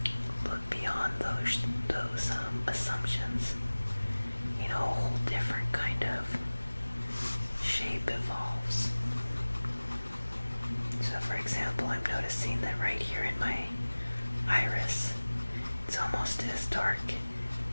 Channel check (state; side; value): inverted; both; correlation -1.00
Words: look beyond those assumptions, a whole different kind of shape evolves. So for example, I'm noticing that right here in my iris, it's almost as dark